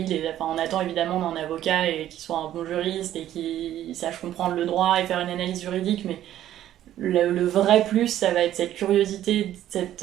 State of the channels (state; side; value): quieter; left; 12.2 dB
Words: on attend évidemment d'un avocat et qu'il soit un bon juriste et qu'il sache comprendre le droit et faire une analyse juridique, mais le vrai plus, ça va être cette curiosité